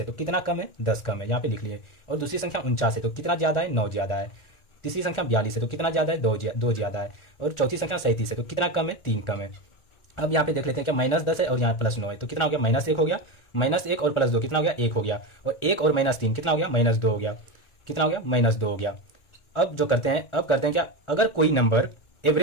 तो कितना कम है 10 कम है, यहाँ पे लिख लिए। और दूसरी संख्या 49 है तो कितना ज़्यादा है 9 ज़्यादा है। तीसरी संख्या 42 है तो कितना ज़्यादा है 2 ज़्यादा है। और चौथी संख्या 37 है तो कितना कम है 3 कम है। अब यहाँ पे देख लेते हैं क्या -10 है और यहाँ +9 है तो कितना हो गया -1 हो गया, -1 और +2 कितना हो गया 1 हो गया। और 1 और -3 कितना हो गया -2 हो गया, कितना हो गया -2 हो गया। अब जो करते हैं, अब करते हैं क्या, अगर कोई नंबर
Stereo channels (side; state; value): right; late; 1.4 ms